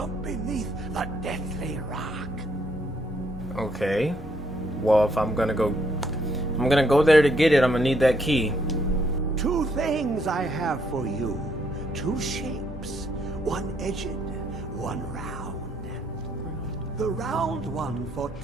beneath the deathly rock. Okay. Well, if I'm gonna go there to get it, I'm gonna need that key. Two things I have for you. Two shapes. One edged, one round. The round one for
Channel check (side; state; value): both; normal; correlation 0.71